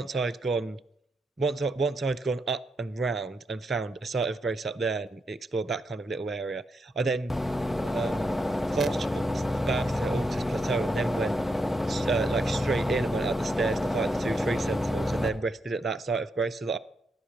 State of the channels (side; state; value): both; normal; correlation 0.81